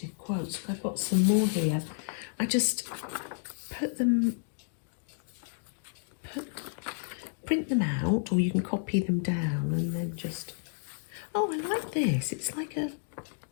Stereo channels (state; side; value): silent; right; digital silence